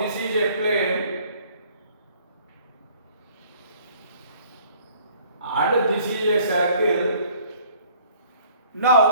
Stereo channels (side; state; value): both; inverted; correlation -0.56